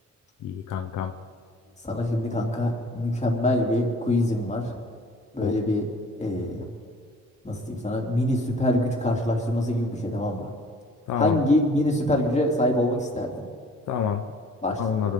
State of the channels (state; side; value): normal; both; correlation 0.52